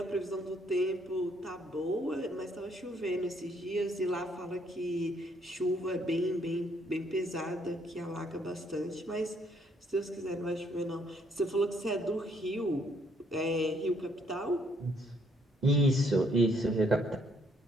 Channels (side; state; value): both; normal; correlation 0.68